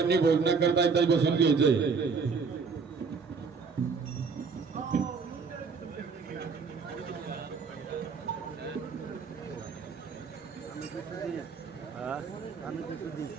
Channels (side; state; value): left; quieter; 5.2 dB